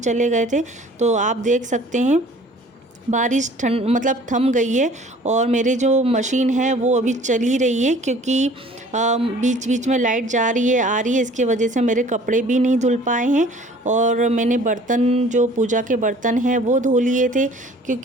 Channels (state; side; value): normal; both; correlation 0.51